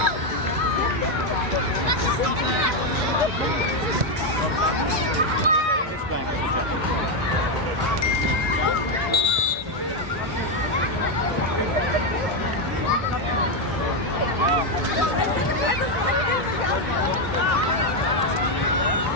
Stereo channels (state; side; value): normal; both; correlation 0.05